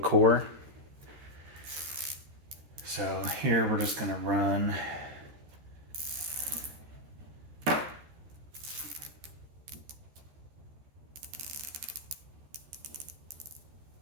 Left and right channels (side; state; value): left; late; 13 ms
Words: So here we're just going to run